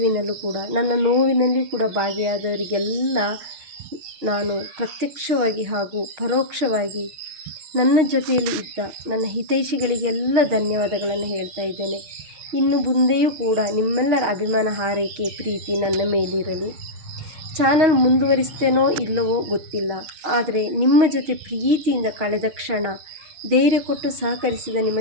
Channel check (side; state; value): left; late; 6.4 ms